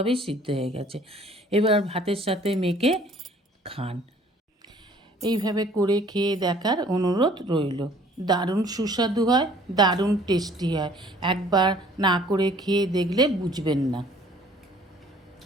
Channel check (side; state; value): both; normal; correlation 0.55